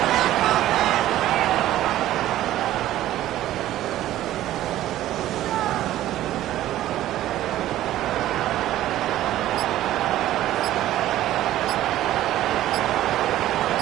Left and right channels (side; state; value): left; quieter; 13.9 dB